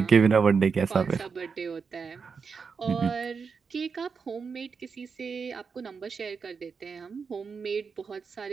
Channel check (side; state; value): left; quieter; 5.5 dB